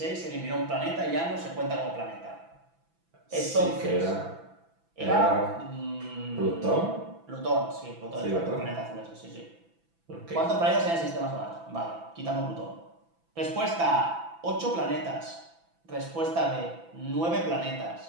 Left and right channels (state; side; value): late; left; 6.0 ms